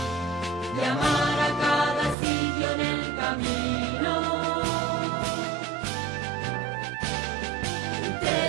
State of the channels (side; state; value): left; drops out; at 2.1 s